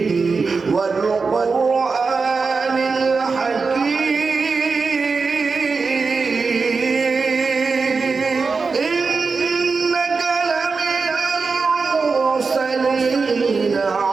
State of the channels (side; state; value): left; quieter; 4.6 dB